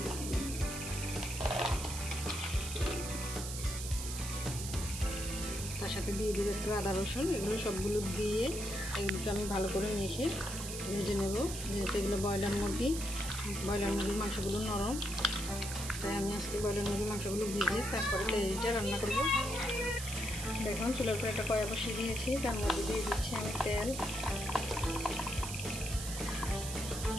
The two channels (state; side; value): noise; right; hiss, 7 dB below the sound